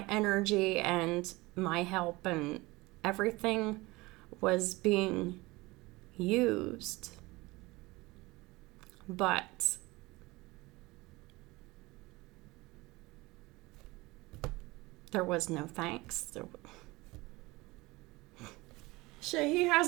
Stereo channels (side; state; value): left; quieter; 21.9 dB